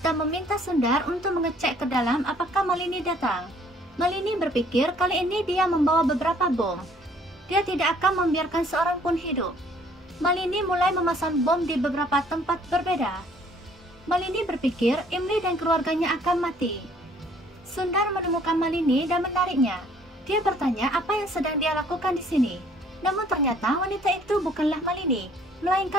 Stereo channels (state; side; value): normal; both; correlation 0.59